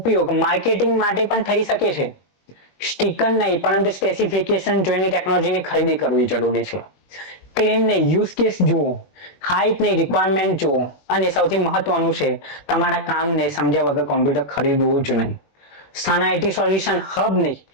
માર્કેટિંગ માટે પણ થઈ શકે છે. સ્ટીકર નહીં પરંતુ સ્પેસિફિકેશન જોઈને ટેકનોલોજીની ખરીદી કરવી જરૂરી છે. ક્લેમ ને યુઝ કેસ જુઓ, હાઇપ ને રિક્વાયરમેન્ટ જુઓ અને સૌથી મહત્વનું છે તમારા કામને સમજ્યા વગર કોમ્પ્યુટર ખરીદવું જ નહીં. સન આઈટી સોલ્યુશન હબની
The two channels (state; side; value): late; right; 21 ms